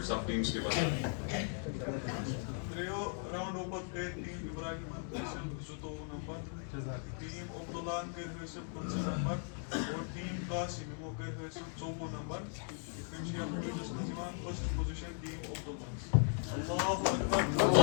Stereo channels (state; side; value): silent; right; 53 dB below the other